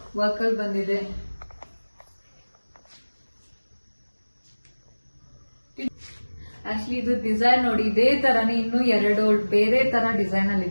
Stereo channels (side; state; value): both; inverted; correlation -1.00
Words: ವರ್ಕ್ ಅಲ್ಲಿ ಬಂದಿದೆ. ಆಕ್ಚುಲಿ ಇದು ಡಿಸೈನ್ ನೋಡಿ, ಇದೇ ತರನೇ ಇನ್ನು 2 ಬೇರೆ ತರ ಡಿಸೈನ್ ಅಲ್ಲಿ